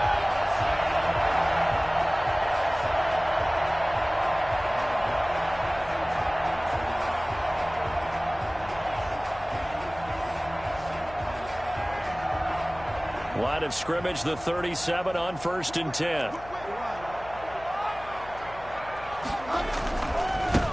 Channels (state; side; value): noise; left; hum, 18 dB below the sound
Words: Line of scrimmage, the 37 on 1st and 10.